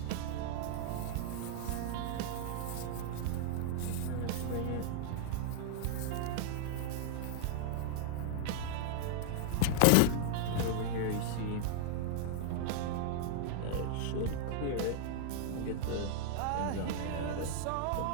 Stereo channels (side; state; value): both; different; correlation 0.00